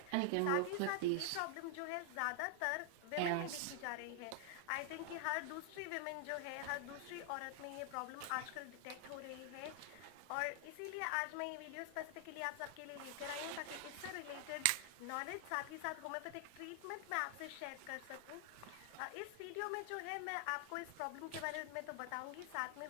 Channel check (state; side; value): different; both; correlation 0.00